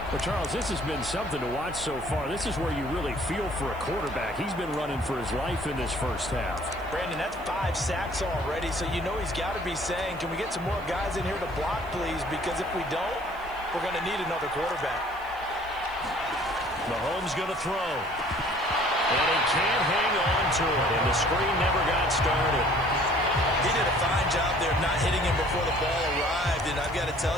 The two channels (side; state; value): right; noise; hiss, 26 dB below the sound